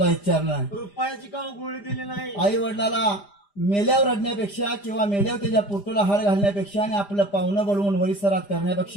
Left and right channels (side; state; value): right; late; 5.0 ms